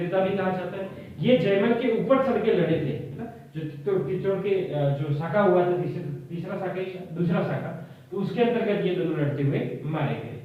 भी कहा जाता है। ये जयमल के ऊपर चढ़ के लड़े थे, जो चित्तौड़ के जो शाखा हुआ था, तीसरा शाखा, दूसरा शाखा, तो उसके अंतर्गत ये दोनों लड़ते हुए मारे गए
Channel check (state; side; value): identical; both; correlation 1.00